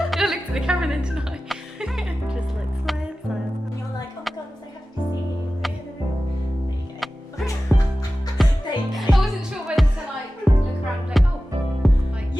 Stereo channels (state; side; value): normal; both; correlation 0.95